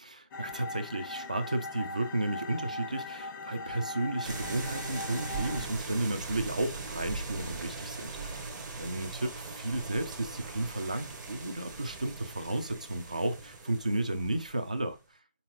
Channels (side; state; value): both; inverted; correlation -0.80